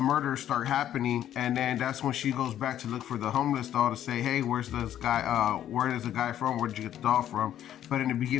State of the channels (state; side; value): quieter; right; 11.2 dB